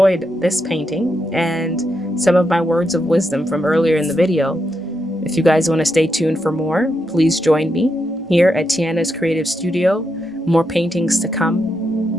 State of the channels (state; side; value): normal; both; correlation 0.83